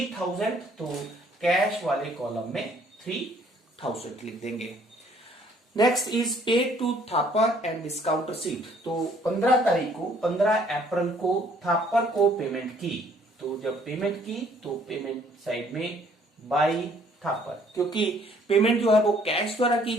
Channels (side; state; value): both; normal; correlation 0.61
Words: तो कैश वाले कॉलम में 3000 लिख देंगे। Next is paid to Thapar and discount received. तो 15 तारीख को 15 अप्रैल को थापर को पेमेंट की, तो जब पेमेंट की तो पेमेंट साइड में बाई थापर, क्योंकि पेमेंट जो है वो कैश द्वारा की